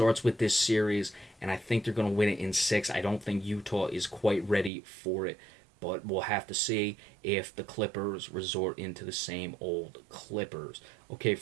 with this series, and I think they're going to win it in 6. I don't think Utah is quite ready for it, but we'll have to see if the Clippers resort into the same old Clippers. Okay,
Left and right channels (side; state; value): left; drops out; at 4.7 s